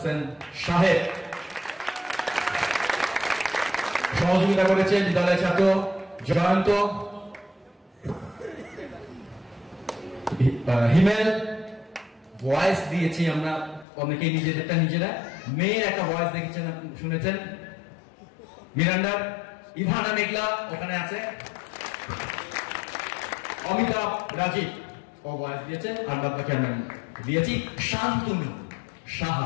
সাহেব, সহযোগিতা করেছে বিদ্যালয়ের ছাত্র জয়ন্ত, হিমেল। ভয়েস দিয়েছি আমরা অনেকেই নিজেদেরটা নিজেরা, মেয়ের একটা ভয়েস দেখেছেন শুনেছেন মিরান্ডার। ইভানা মেঘলা ওখানে আছে, অমিতাভ রাজীব ও ভয়েস দিয়েছে, আর বাদবাকি আমরা দিয়েছি। শান্তনু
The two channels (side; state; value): right; drops out; at 13.9 s